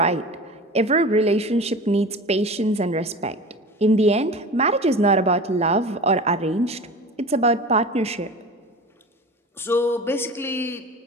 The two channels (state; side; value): normal; both; correlation 0.34